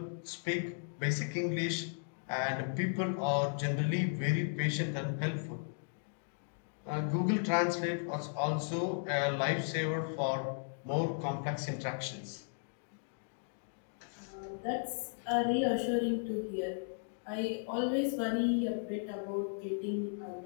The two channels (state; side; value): silent; right; digital silence